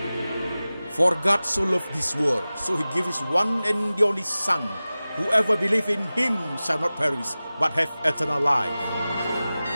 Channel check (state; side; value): inverted; both; correlation -0.97